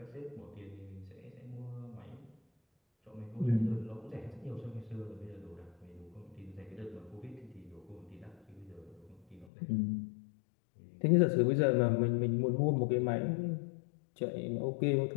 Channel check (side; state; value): right; drops out; at 9.5 s